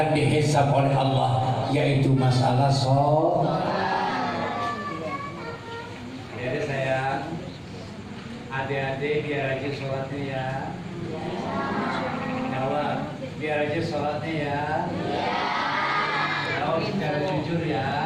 dihisab oleh Allah, yaitu masalah sholat. Jadi saya adik-adik biar rajin sholatnya ya. Jawab, biar rajin sholatnya ya. Jawab secara jujur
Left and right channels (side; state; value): both; identical; correlation 1.00